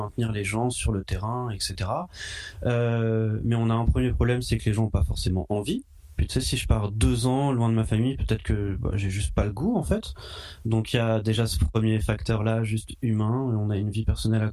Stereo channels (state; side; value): identical; both; correlation 1.00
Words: les gens sur le terrain, etc. Mais on a un premier problème, c'est que les gens n'ont pas forcément envie. Puis tu sais, si je pars 2 ans loin de ma famille, peut-être que j'ai juste pas le goût en fait. Donc il y a déjà ce premier facteur-là, juste humain. On a une vie personnelle à